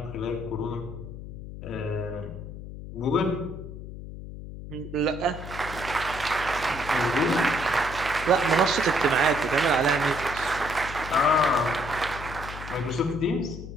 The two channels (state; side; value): noise; left; hum, 11 dB below the sound